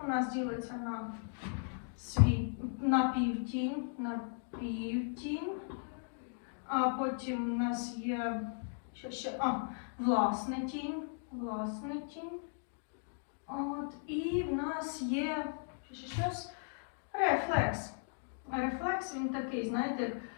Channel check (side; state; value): right; silent; digital silence